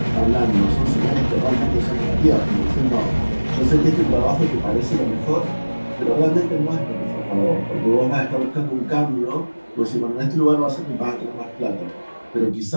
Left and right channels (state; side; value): inverted; both; correlation -1.00